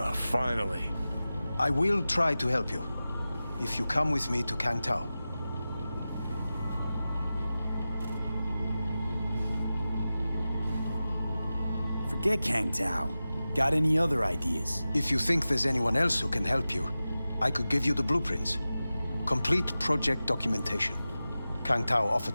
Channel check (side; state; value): both; inverted; correlation -0.95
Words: finally. I will try to help you. If you come with me to Kang Tao. Forget Kang Tao. Got any other ideas? If you think there's anyone else who can help you, I could give you the blueprints. Complete project documentation. Kang Tao